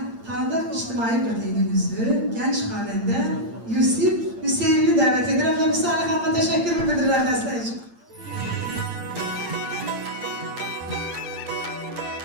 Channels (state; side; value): late; left; 8.7 ms